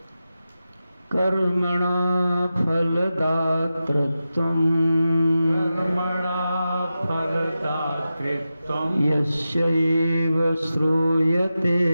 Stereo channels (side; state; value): both; inverted; correlation -0.92